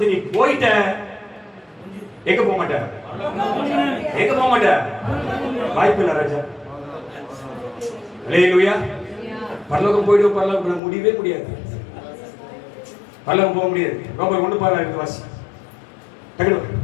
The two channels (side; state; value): right; drops out; at 10.8 s